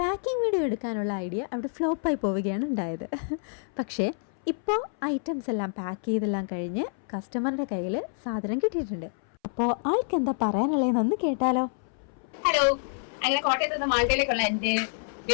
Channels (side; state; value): right; silent; 60 dB below the other